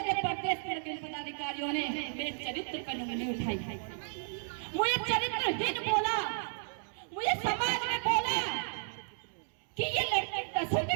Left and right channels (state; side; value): silent; left; 55 dB below the other